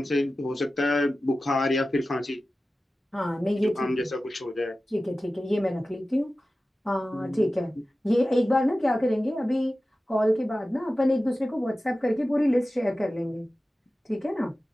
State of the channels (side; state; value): both; normal; correlation 0.95